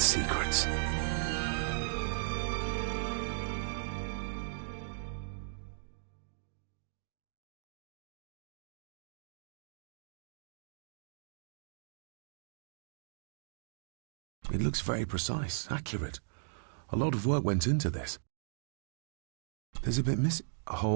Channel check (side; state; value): left; silent; digital silence